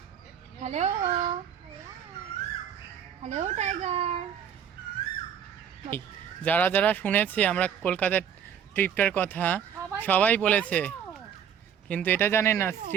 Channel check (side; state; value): left; quieter; 8.4 dB